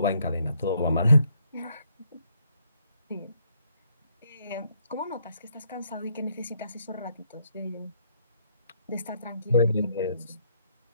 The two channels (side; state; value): both; inverted; correlation -0.71